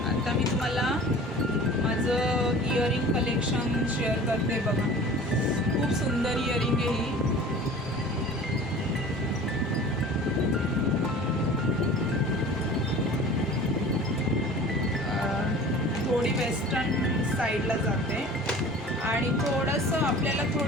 आता मी तुम्हाला माझं इयरिंग कलेक्शन शेअर करते बघा. खूप सुंदर इयरिंग आहे ही. थोडी वेस्टर्न साईडला जाते आणि थोडंसं आपल्याला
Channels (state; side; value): normal; both; correlation 0.42